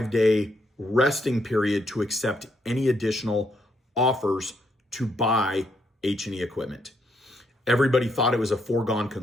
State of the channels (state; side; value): normal; both; correlation 0.75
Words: resting period to accept any additional offers to buy H&E equipment. Everybody thought it was a foregone